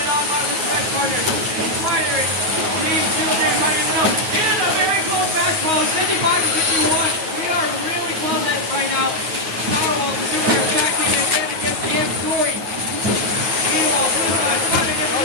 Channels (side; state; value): left; late; 9.3 ms